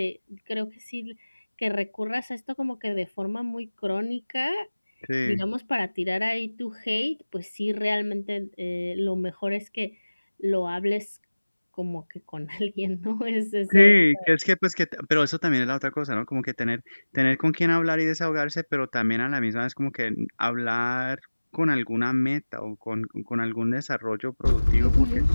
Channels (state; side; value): inverted; both; correlation -1.00